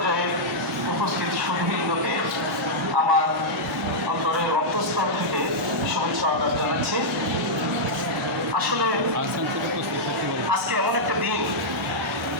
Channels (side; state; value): both; normal; correlation -0.07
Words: উপস্থিত সুধীবৃন্দকে আমার অন্তরের অন্তঃস্থল থেকে শুভেচ্ছা আদান জানাচ্ছি। আসলে আজকে এমন একটা দিন,